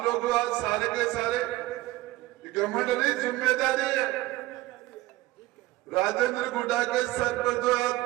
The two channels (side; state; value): left; quieter; 17.9 dB